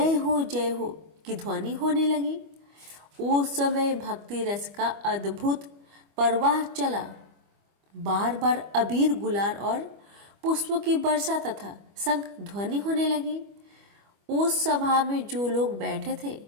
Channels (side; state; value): left; late; 25 ms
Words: हो की ध्वनि होने लगी। उस समय भक्ति रस का अद्भुत प्रवाह चला। बार बार अबीर गुलाल और पुष्पों की वर्षा तथा शंख ध्वनि होने लगी। उस सभा में जो लोग बैठे थे